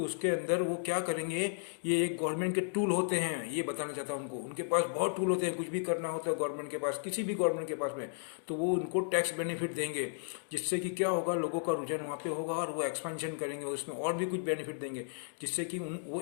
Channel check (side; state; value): right; silent; digital silence